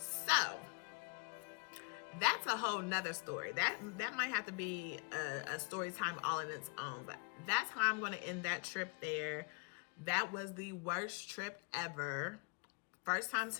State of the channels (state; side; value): quieter; right; 35.1 dB